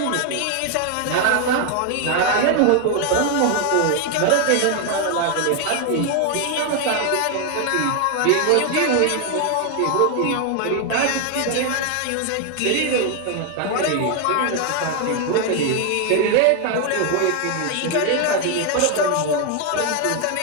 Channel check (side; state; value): both; different; correlation 0.01